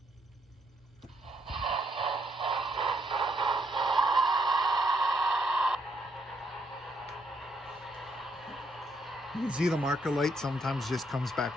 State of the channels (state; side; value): normal; both; correlation 0.73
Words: You can see the marker light sometimes just comes back